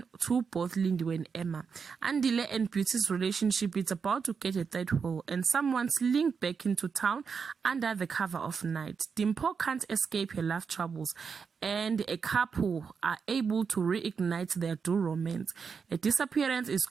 to both Lindiwe and Emma. Andile and Beauty's relationship is about to get a third hole, and someone's linked back into town under the cover of night. Dimpo can't escape her love troubles, and a couple are able to reignite their dual romance. A disappearance is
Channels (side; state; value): left; quieter; 5.9 dB